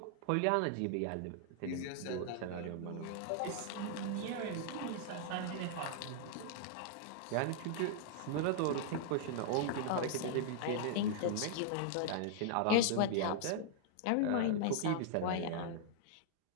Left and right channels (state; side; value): different; both; correlation -0.01